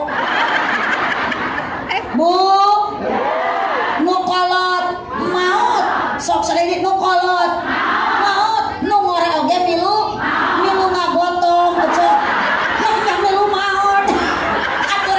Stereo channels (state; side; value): identical; both; correlation 1.00